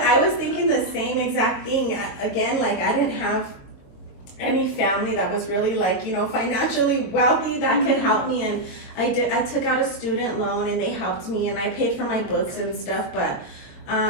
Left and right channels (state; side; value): late; right; 22 ms